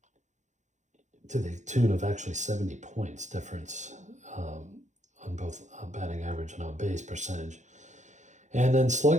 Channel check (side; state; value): left; late; 0.35 ms